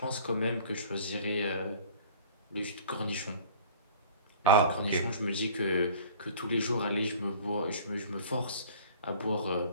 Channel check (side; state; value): both; inverted; correlation -0.47